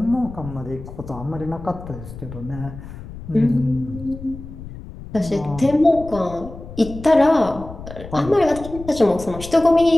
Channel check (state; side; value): noise; left; rumble, 13 dB below the sound